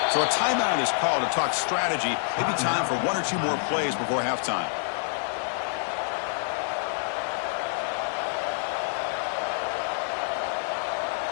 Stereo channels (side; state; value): right; silent; digital silence